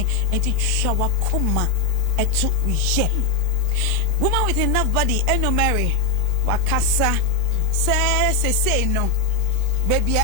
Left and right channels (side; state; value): right; quieter; 3.0 dB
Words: enti twa wakoma etu ye. Woman with enough body, eno Mary, wakasa, say no, baby,